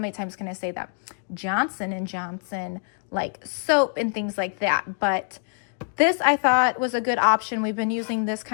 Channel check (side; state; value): right; silent; digital silence